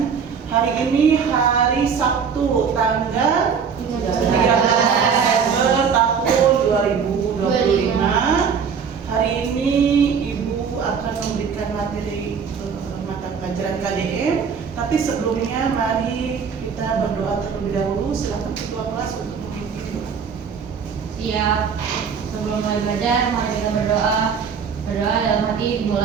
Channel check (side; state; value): left; quieter; 6.5 dB